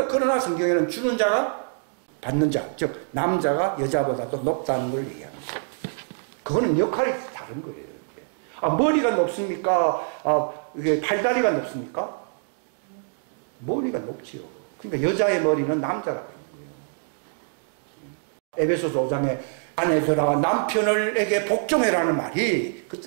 그러나 성경에는 주는 자가 받는 자, 즉 남자가 여자보다도 높다는 걸 얘기합니다. 그거는 역할이 다른 거예요. 아, 머리가 높습니까? 아, 이게 팔다리가 높습니까? 머리가 높지요. 그러니까 여자의 머리는 남자라고 하는 거예요. 에베소서 5장에 아내들아 남편에게 복종해라는 말이 그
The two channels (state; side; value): silent; left; digital silence